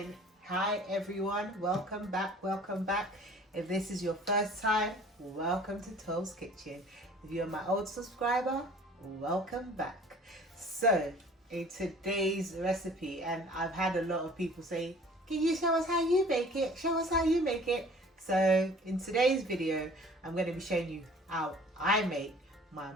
Hi everyone, welcome back. If this is your first time, welcome to Toes Kitchen. If you're my old subscriber, welcome back. So in today's recipe, and I've had a lot of people say, can you show us how you make it? Show us how you make it. So in today's video, I'm going to be showing you how I make my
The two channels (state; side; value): normal; both; correlation 0.49